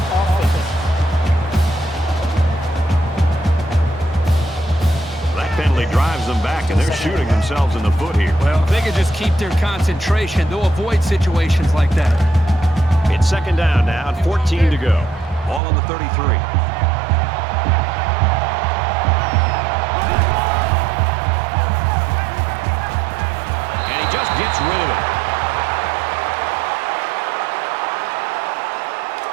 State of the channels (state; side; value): drops out; left; at 15.6 s